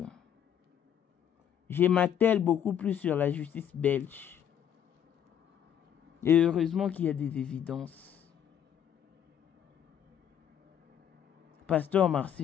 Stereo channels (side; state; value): right; quieter; 9.3 dB